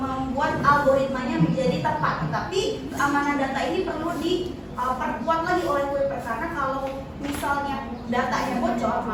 algoritmanya menjadi tepat. Tetapi keamanan data ini perlu diperkuat lagi oleh Kuiper, karena kalau misalnya datanya bocor,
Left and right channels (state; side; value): identical; both; correlation 1.00